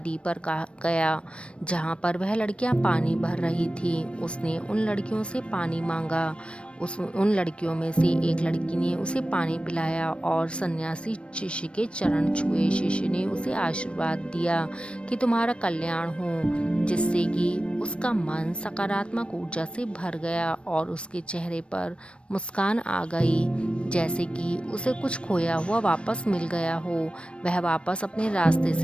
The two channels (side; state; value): right; late; 0.059 ms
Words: पर गया जहाँ पर वह लड़कियाँ पानी भर रही थी। उसने उन लड़कियों से पानी मांगा। उन लड़कियों में से एक लड़की ने उसे पानी पिलाया और सन्यासी शिष्य के चरण छुए। शिष्य ने उसे आशीर्वाद दिया कि तुम्हारा कल्याण हो, जिससे कि उसका मन सकारात्मक ऊर्जा से भर गया और उसके चेहरे पर मुस्कान आ गई, जैसे कि उसे कुछ खोया हुआ वापस मिल गया हो। वह वापस अपने रास्ते